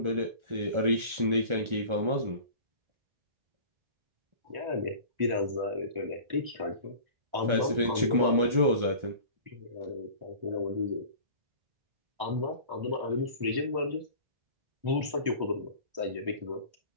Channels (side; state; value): left; late; 1.4 ms